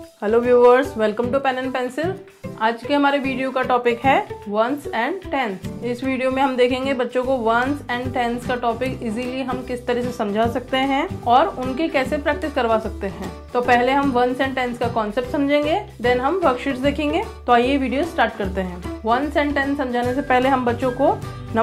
Hello viewers, welcome to pen and pencil. आज के हमारे वीडियो का टॉपिक है वंस एंड टेंस। इस वीडियो में हम देखेंगे बच्चों को वंस एंड टेंस का टॉपिक इजीली हम किस तरह से समझा सकते हैं और उनकी कैसे प्रैक्टिस करवा सकते हैं। तो पहले हम वंस एंड टेंस का कॉन्सेप्ट समझेंगे, देन हम वर्कशीट्स देखेंगे। तो आइए वीडियो स्टार्ट करते हैं। वंस एंड टेंस समझाने से पहले हम बच्चों को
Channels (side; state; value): both; identical; correlation 1.00